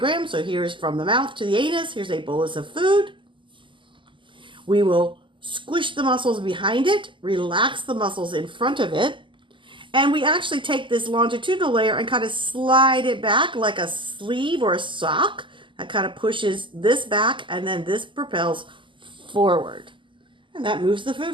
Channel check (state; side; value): late; left; 0.24 ms